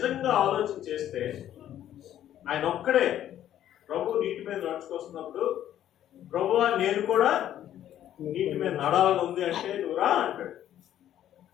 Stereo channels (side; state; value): right; quieter; 11.5 dB